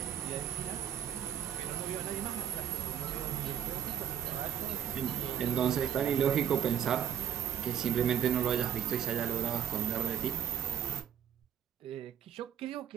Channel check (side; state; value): left; quieter; 9.3 dB